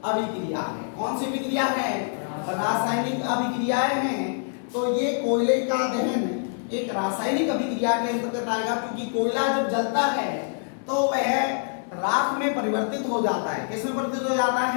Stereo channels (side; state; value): right; silent; 61 dB below the other